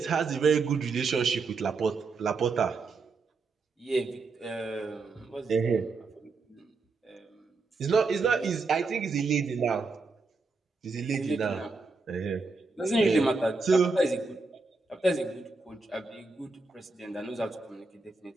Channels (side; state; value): left; quieter; 4.0 dB